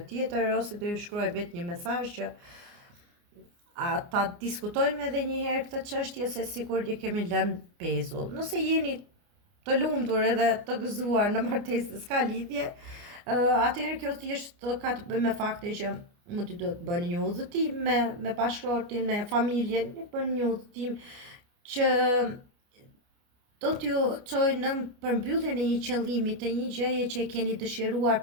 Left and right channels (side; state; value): left; late; 29 ms